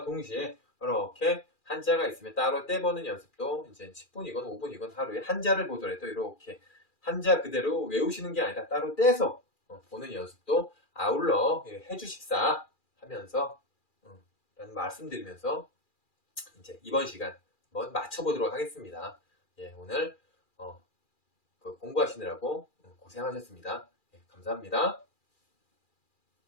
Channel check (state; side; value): late; right; 2.4 ms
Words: 동시에 이렇게 한자가 있으면 따로 떼보는 연습도 이제 10분이건 5분이건 하루에 한자를 보더라도 이렇게 한자 그대로 외우시는 게 아니라 따로 떼서 보는 연습도 아울러 해주십사 하면서 라는 말씀드리면서 이제 이번 시간 한번 맞춰보도록 하겠습니다. 오늘 공부하시느라고 고생하셨습니다. 감사합니다.